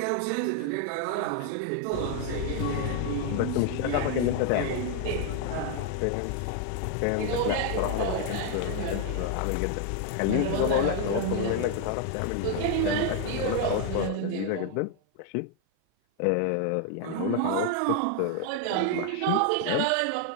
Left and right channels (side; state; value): both; different; correlation 0.00